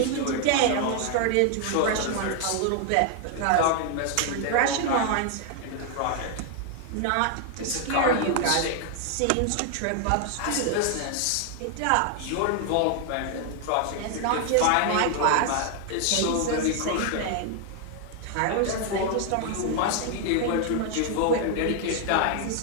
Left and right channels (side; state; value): both; different; correlation 0.00